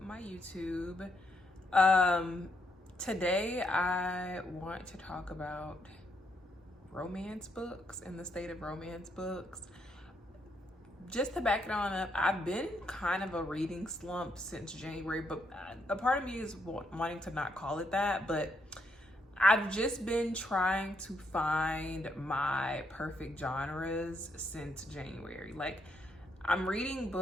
YouTube. Today I want to talk about romance books and the state of romance books. Just to back it on up, I've been kind of a reading slump since January, but a part of me is wanting to not call it that, but I've just been trying to find my perfect genres since January. Like, I'm reading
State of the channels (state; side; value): normal; both; correlation 0.76